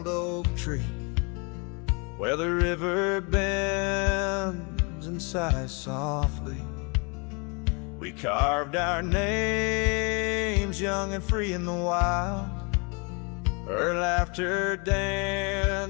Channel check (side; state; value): right; quieter; 32.4 dB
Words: oak tree, where the river bends and sighs softly, we carved our names young and free in the wild. Her laughter